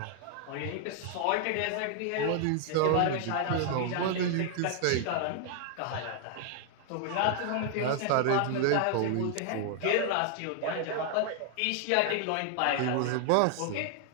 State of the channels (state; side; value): different; both; correlation 0.00